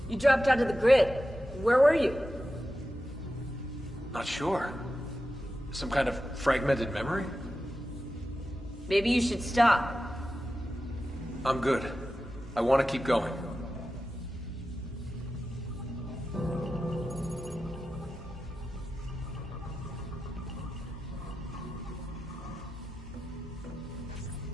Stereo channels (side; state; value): both; normal; correlation 0.92